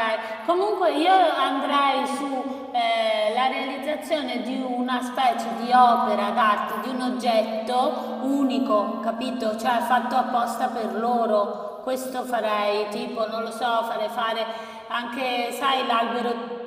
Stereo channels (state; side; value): identical; both; correlation 1.00